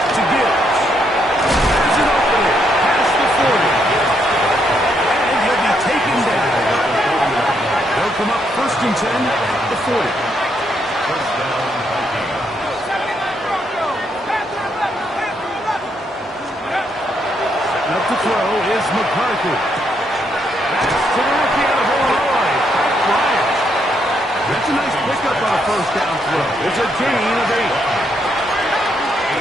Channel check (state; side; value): normal; both; correlation 0.76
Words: to Gibbs. There's an opening past the 40. And he'll be taken down. They'll come up 1st and 10 at the 40. First down, Vikings. Up to throw is McCarthy. That's to the rookie out of Illinois, Pat Bryant. That's a nice pickup on a first down throw. It's a gain of 8. 8